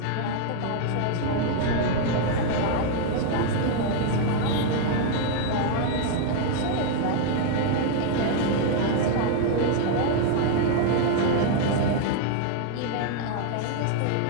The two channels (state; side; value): different; both; correlation 0.00